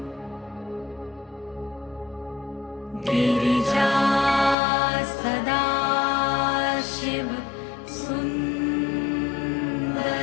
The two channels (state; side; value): drops out; right; at 4.5 s